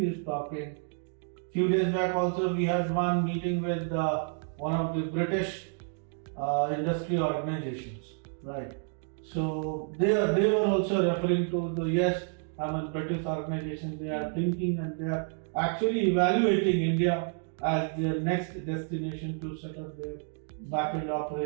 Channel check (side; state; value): left; silent; 58 dB below the other